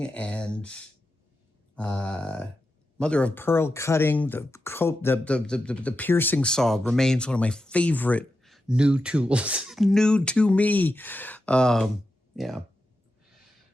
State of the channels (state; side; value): normal; both; correlation 0.89